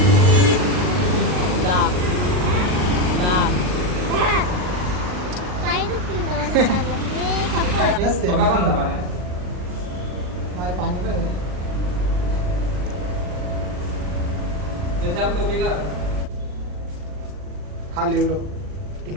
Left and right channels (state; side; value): late; left; 39 ms